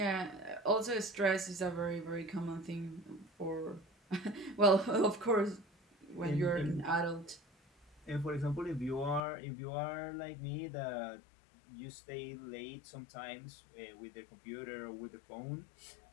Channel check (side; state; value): right; drops out; at 9.2 s